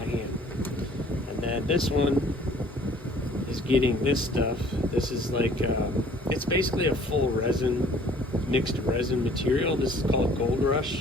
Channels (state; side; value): normal; both; correlation 0.55